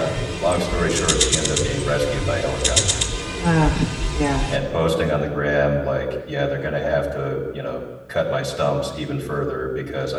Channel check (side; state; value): both; identical; correlation 1.00